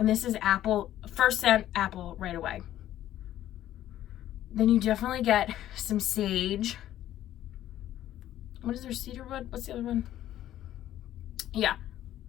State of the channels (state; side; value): quieter; right; 12.7 dB